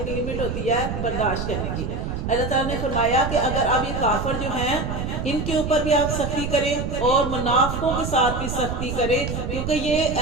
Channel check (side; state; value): right; noise; rumble, 4 dB below the sound